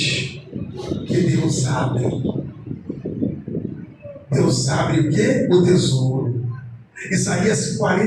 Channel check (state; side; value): identical; both; correlation 1.00